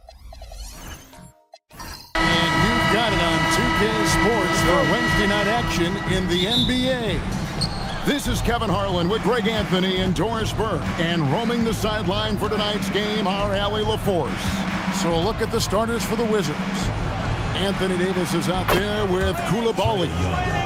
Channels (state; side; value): identical; both; correlation 1.00